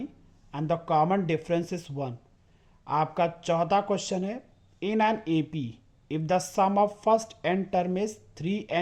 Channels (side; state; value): both; identical; correlation 1.00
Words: and the common difference is 1। आपका चौथा question है in an AP if the sum of first n term is